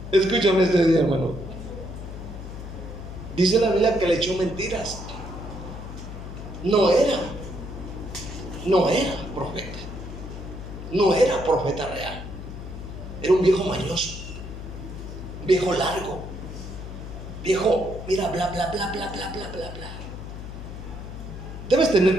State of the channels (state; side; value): noise; left; hum, 10 dB below the sound